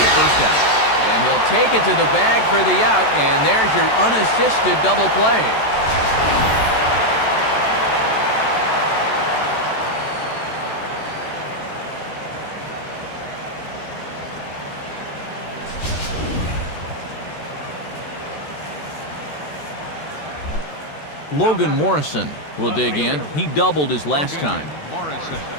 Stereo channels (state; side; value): late; right; 14 ms